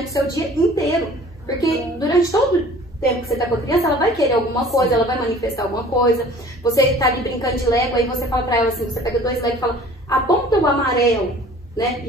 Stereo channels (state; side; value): normal; both; correlation 0.48